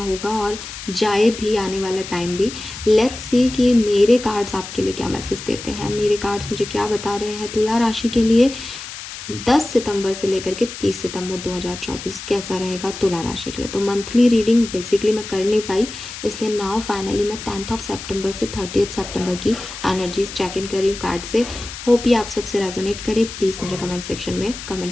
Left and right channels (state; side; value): noise; left; hiss, 11 dB below the sound